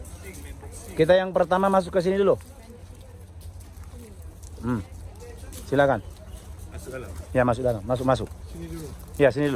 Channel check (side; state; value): both; identical; correlation 1.00